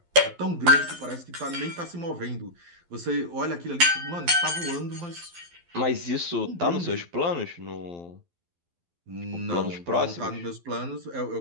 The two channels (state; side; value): late; left; 12 ms